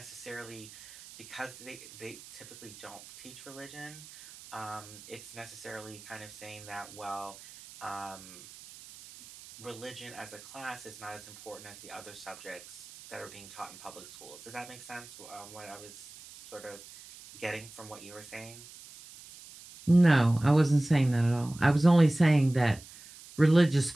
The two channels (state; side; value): noise; right; hiss, 18 dB below the sound